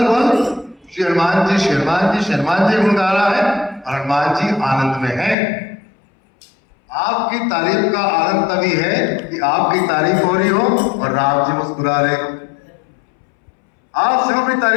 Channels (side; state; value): right; drops out; at 5.4 s